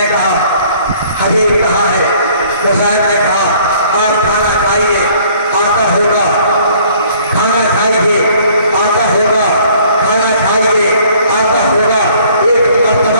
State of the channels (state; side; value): inverted; both; correlation -0.57